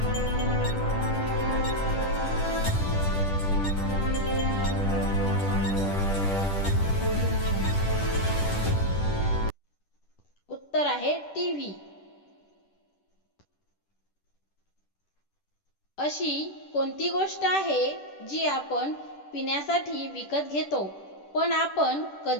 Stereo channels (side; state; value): right; late; 10 ms